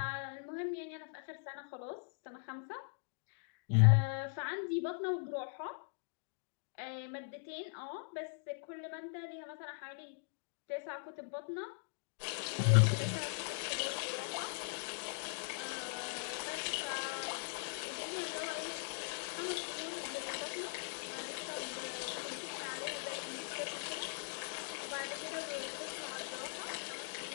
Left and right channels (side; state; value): right; silent; digital silence